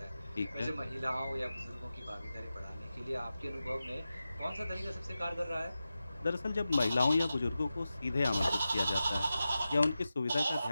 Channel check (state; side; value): inverted; both; correlation -0.93